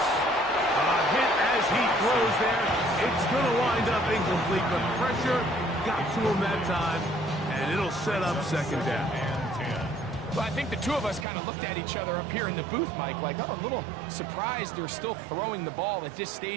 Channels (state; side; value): drops out; left; at 11.2 s